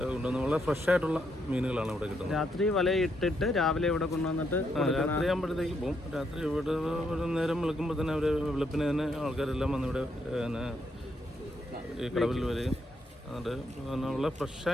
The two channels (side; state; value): both; normal; correlation 0.77